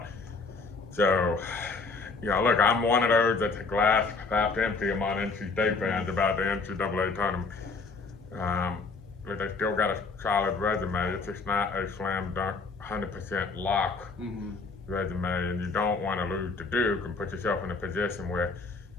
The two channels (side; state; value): right; quieter; 4.2 dB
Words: So, you know, look, I'm one of those that's a glass half empty among NC State fans about the NCAA tournament. but they still got a solid resume. It's just not a slam dunk, 100% lock resume, and you don't want to lose to Duke and put yourself in a position where